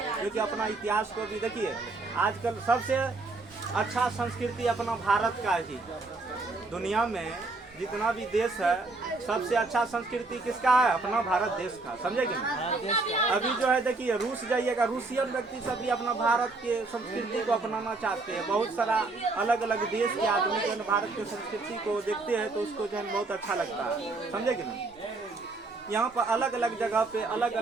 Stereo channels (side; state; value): left; quieter; 3.5 dB